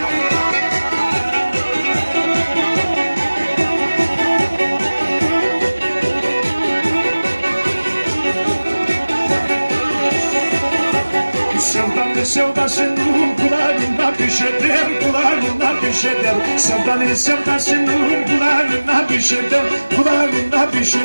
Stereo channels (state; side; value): inverted; both; correlation -1.00